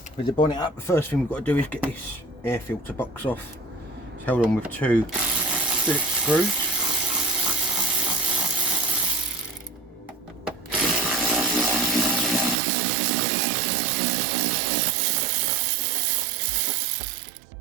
with the bonnet up, the first thing we've got to do is get this air filter box off. It's held on with two Phillips screws.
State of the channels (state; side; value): drops out; left; at 12.6 s